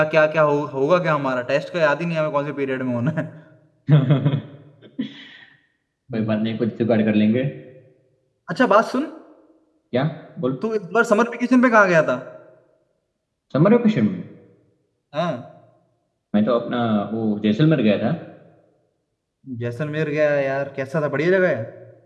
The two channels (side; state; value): both; identical; correlation 1.00